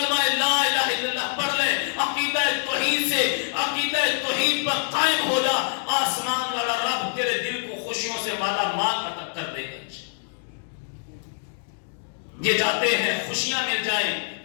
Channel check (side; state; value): right; silent; digital silence